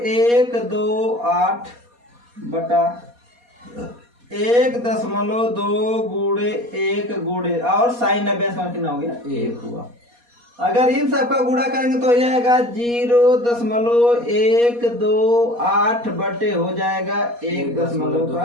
बटा 1.2 गुणे 1 गुणे और साइन 90 का कितना हो गया 1 हुआ। अगर इन सबका गुणा करेंगे तो हो जाएगा 0.128 बटे हो जाएगा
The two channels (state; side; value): late; left; 4.2 ms